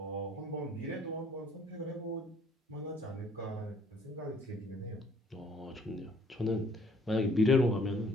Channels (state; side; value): normal; both; correlation 0.60